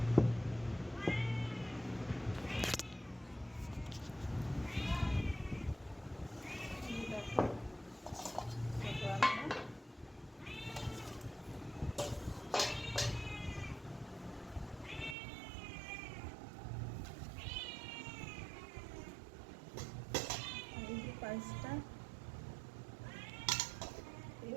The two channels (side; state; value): left; drops out; at 15.2 s